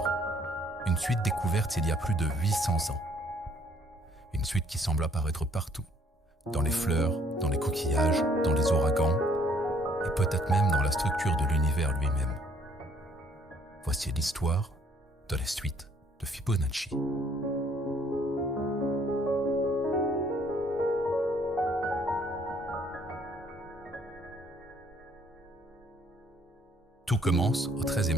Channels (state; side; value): normal; both; correlation 0.63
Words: une suite découverte il y a plus de 800 ans. Une suite qui semble apparaître partout, dans les fleurs, dans les coquillages, dans les ouragans, et peut-être même dans la structure de l'univers lui-même. Voici l'histoire de la suite de Fibonacci. Tout commence au